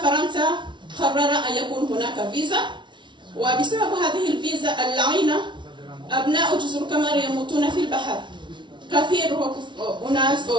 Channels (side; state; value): left; late; 0.23 ms